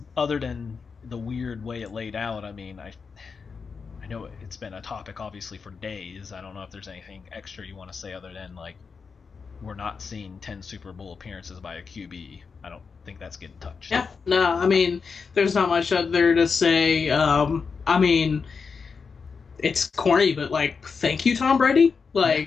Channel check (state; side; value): quieter; right; 5.4 dB